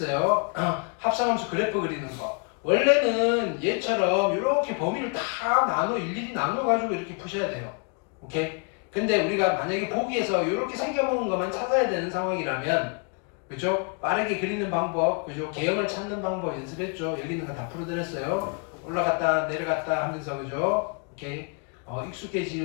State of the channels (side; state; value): right; quieter; 37.7 dB